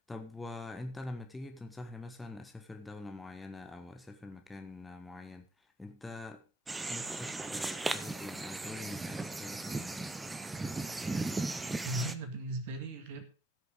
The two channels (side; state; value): both; normal; correlation 0.75